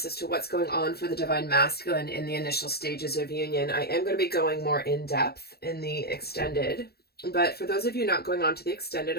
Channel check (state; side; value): late; right; 0.46 ms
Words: as to what's going on for the Divine Masculine in the initial stages of union. I am going to be going more in depth in the extended, but for those of you not going on to the extended,